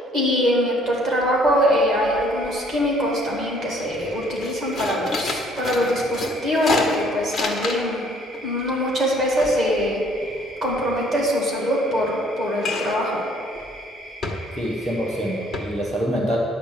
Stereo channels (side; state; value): both; normal; correlation 0.61